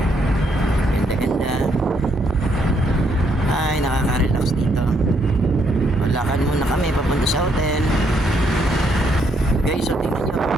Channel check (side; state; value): both; normal; correlation 0.73